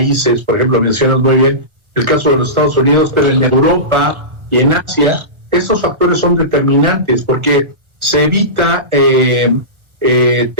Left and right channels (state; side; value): late; left; 1.3 ms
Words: Por ejemplo, mencionas muy bien el caso de los Estados Unidos, pero en Europa y en Asia, estos factores son determinantes porque se evita